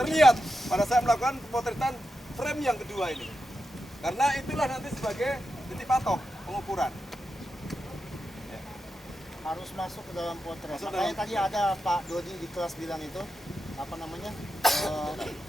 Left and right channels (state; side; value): normal; both; correlation 0.89